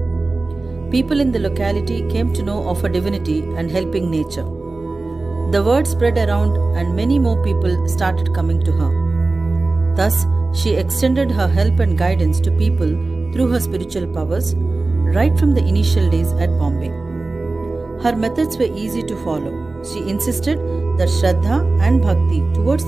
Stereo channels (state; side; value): quieter; left; 3.3 dB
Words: People in the locality came to know of her divinity and helping nature. The word spread around and many more people started coming to her. Thus, she extended her help and guidance to people through her spiritual powers right from the initial days at Bombay. Her methods were easy to follow. She insisted that Shraddha and Bhakti towards